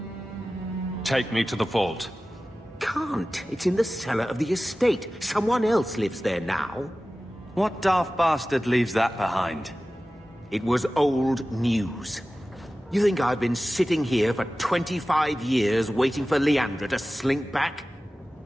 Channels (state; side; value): normal; both; correlation 0.96